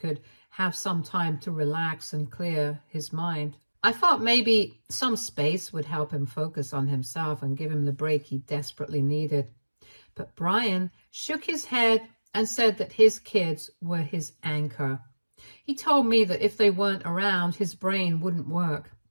have some time to relax and clear his mind. I thought maybe some space would help him focus on himself and give him the break he desperately needed. But Brian shook his head and said that his kids were his anchor. He told me that if they weren't around, his brain wouldn't work,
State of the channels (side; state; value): both; inverted; correlation -1.00